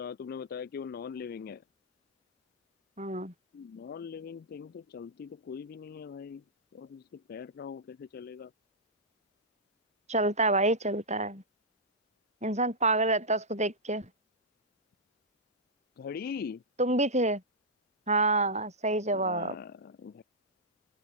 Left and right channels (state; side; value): normal; both; correlation -0.11